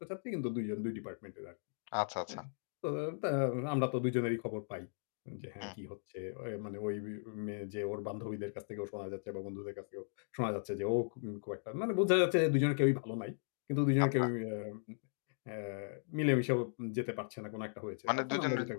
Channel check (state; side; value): silent; right; digital silence